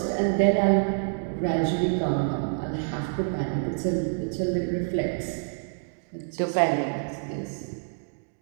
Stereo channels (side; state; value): left; silent; digital silence